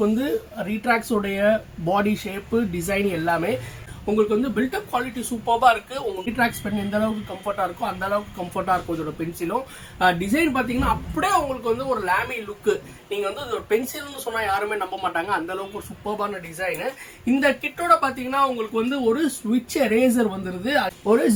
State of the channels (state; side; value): identical; both; correlation 1.00